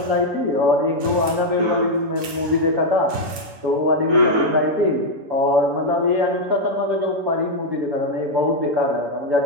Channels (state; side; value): late; left; 7.0 ms